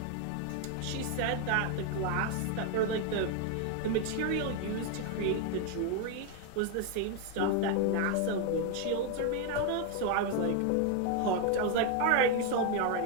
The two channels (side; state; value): both; different; correlation 0.01